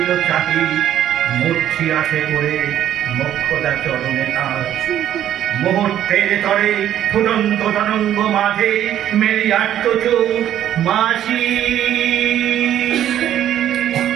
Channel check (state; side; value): quieter; left; 11.2 dB